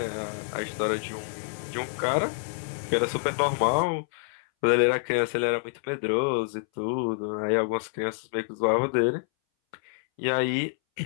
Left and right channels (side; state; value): right; silent; 60 dB below the other